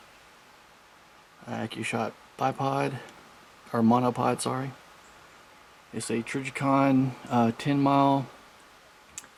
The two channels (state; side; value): identical; both; correlation 1.00